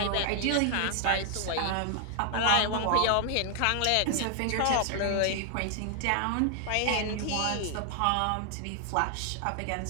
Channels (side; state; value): both; different; correlation 0.00